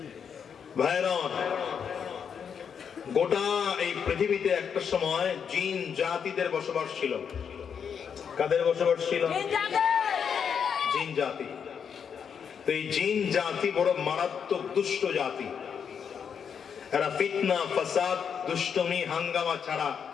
ভাইরা, গোটা এই পৃথিবীতে একটা সময় জিন জাতিদের বসবাস ছিল। কাদের বসবাস ছিল? জিন জাতি। তো এই জিন জাতি বড় মারাত্মক দুষ্ট জাতি। এরা ফিতনা, ফাসাদ, দুষ্টমি, হাঙ্গামা ছাড়া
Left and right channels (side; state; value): right; quieter; 7.2 dB